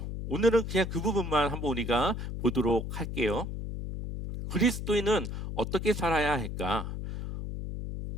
오늘은 그냥 그 부분만 한번 우리가 보도록 할게요. 그리스도인은 어떻게 살아야 할까?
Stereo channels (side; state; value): left; noise; hum, 6 dB below the sound